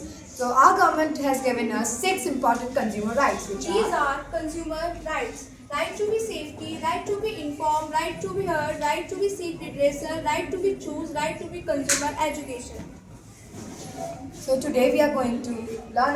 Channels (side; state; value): both; identical; correlation 1.00